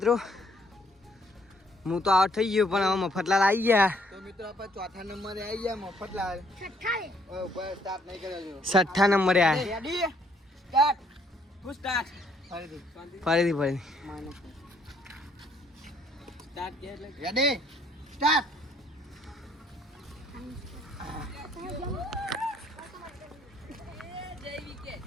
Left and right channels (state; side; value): normal; both; correlation 0.66